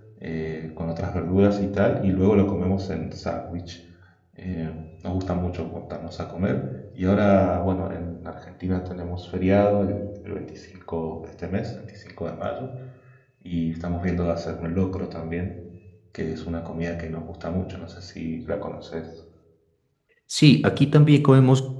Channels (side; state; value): both; identical; correlation 1.00